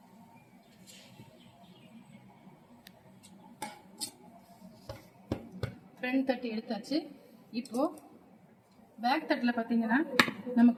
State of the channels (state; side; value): identical; both; correlation 1.00